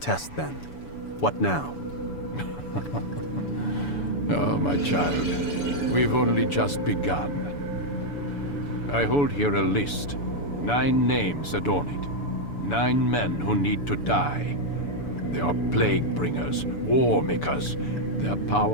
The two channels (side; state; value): right; late; 7.0 ms